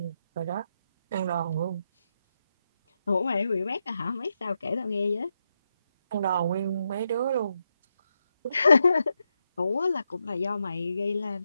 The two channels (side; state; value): both; inverted; correlation -0.84